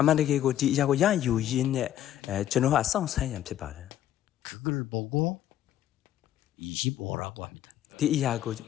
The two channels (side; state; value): right; quieter; 12.0 dB